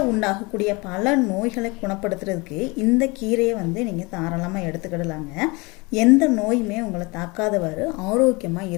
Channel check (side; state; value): right; quieter; 26.3 dB